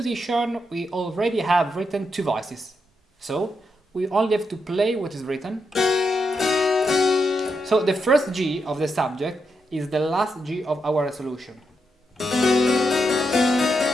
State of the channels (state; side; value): normal; both; correlation 0.83